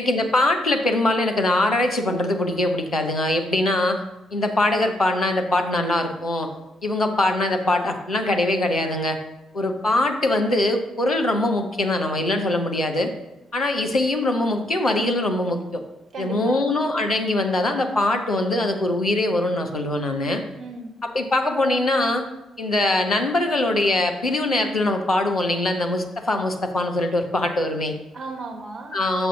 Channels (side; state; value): both; normal; correlation 0.74